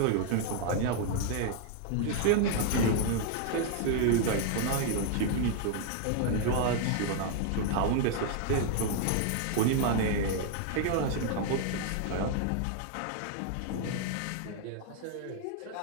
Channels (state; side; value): different; both; correlation 0.00